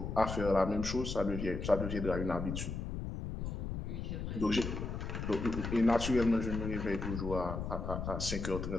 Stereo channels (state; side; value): noise; left; rumble, 4 dB below the sound